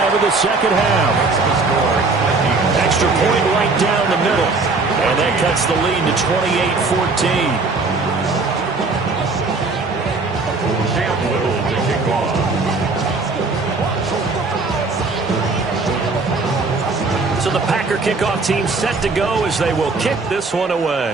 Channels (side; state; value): left; quieter; 3.8 dB